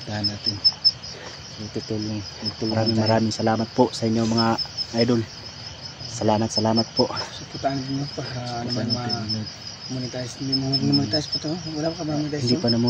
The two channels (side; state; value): both; identical; correlation 1.00